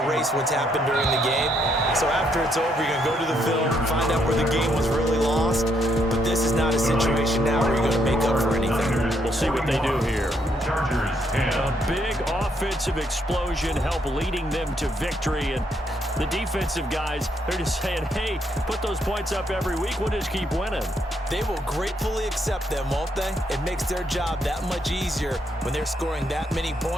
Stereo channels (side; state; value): both; normal; correlation 0.74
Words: erase what's happened during the game. So after it's over, you're going to go to the film, find out where the game was really lost. But this is not a situation now where you're going to make up for anything. We'll Let's see what they do here. Chargers 10. A big offensive explosion help leading them to victory. And the defensive guys, they're just saying, hey, put those points up every week. We'll just keep winning. They will gratefully accept them, won't they? It makes their job that much easier when they're scoring that many